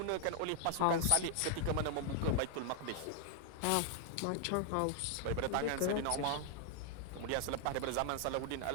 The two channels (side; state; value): both; different; correlation 0.00